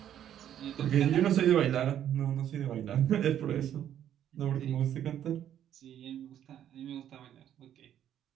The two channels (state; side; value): quieter; left; 10.5 dB